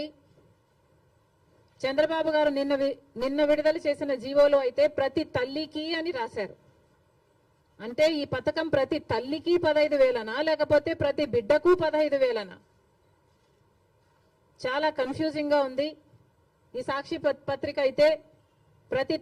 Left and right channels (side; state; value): both; identical; correlation 1.00